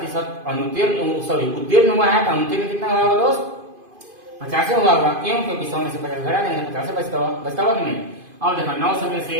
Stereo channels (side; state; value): left; late; 2.5 ms